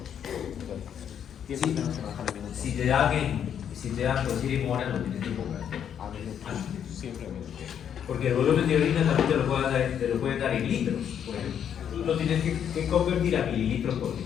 Sí, si te dan decir en horas, lo tienes que cobrar. A minutos. Siempre a minutos. Porque el volumen de orina también te lo pueden dar en litros, por ejemplo. Tú lo tienes que convertir a mililitros por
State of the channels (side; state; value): right; quieter; 8.8 dB